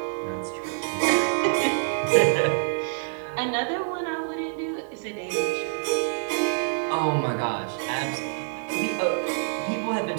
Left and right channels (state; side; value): silent; left; digital silence